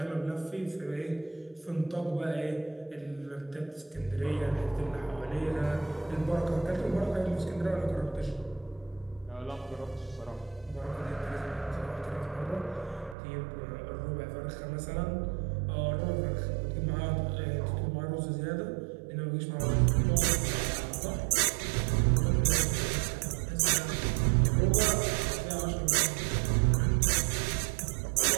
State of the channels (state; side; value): drops out; left; at 13.2 s